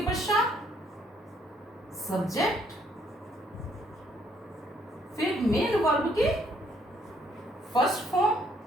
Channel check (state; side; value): normal; both; correlation 0.67